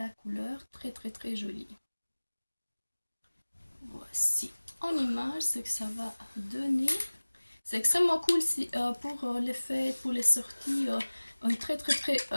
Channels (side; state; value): both; inverted; correlation -1.00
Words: couleur, très jolie. Voici en image ce que ça va donner. C'est extrêmement cool pour les fêtes, pour les sorties. Un très